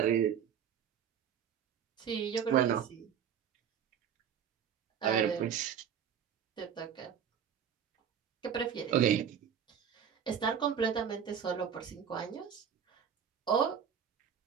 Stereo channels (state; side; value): quieter; left; 8.3 dB